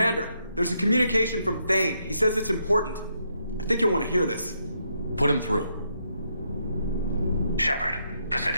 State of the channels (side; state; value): both; inverted; correlation -0.78